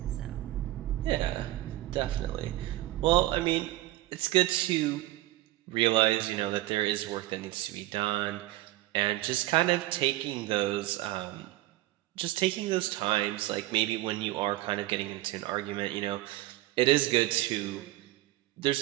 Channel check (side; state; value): left; quieter; 16.8 dB